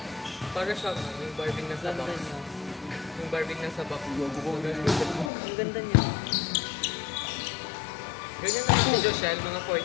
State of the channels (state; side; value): drops out; right; at 5.3 s